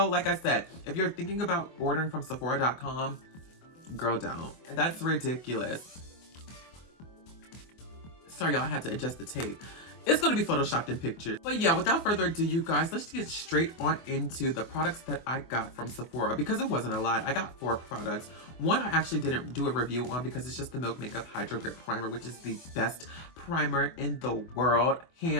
like I said, if you're thinking about ordering from Sephora.com, girl, don't. That's ridiculous. Sorry, y'all, I had to adjust the tape. It's gonna be photoshopped in pictures. But yeah, without further ado, you guys, let's get straight on into the products that I got from Sephora because it wasn't a lot. I got 4 products. One I actually didn't do a review on because it's just the Milk Makeup Hydro Grip Primer, which is the best primer in the world.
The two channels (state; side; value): late; right; 24 ms